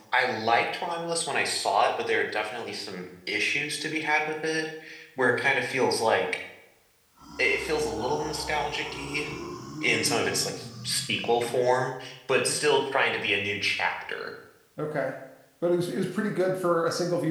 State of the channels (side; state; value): both; identical; correlation 1.00